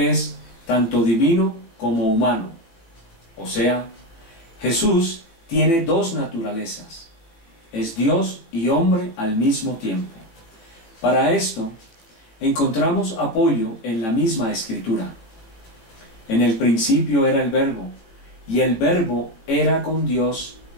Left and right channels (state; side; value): late; right; 18 ms